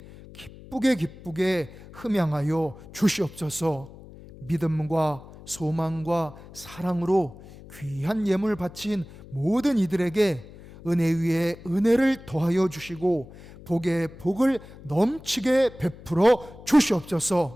기쁘게 흠양하여 주시옵소서. 믿음과 소망과 사랑으로 귀한 예물 바친 모든 이들에게 은혜 위에 은혜를 더하여 주시고 복에 복을 넘치게 베풀어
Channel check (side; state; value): left; noise; hum, 18 dB below the sound